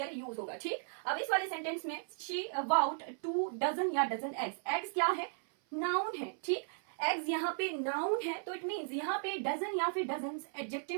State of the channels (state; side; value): silent; left; 54 dB below the other